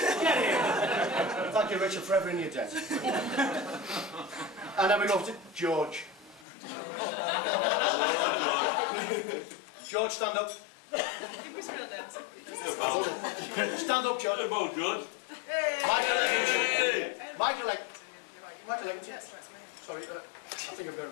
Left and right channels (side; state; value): right; drops out; at 6.5 s